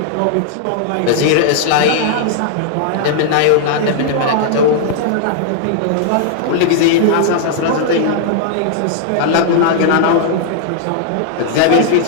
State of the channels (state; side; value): different; both; correlation -0.01